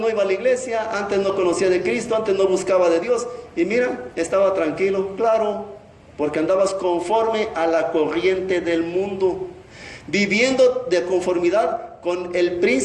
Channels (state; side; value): identical; both; correlation 1.00